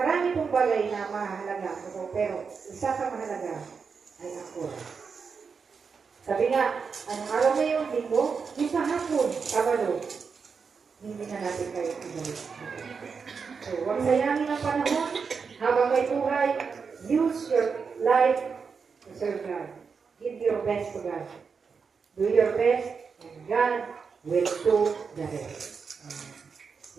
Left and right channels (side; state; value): left; quieter; 5.6 dB